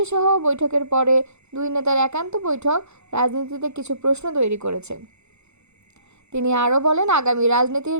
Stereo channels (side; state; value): left; late; 0.81 ms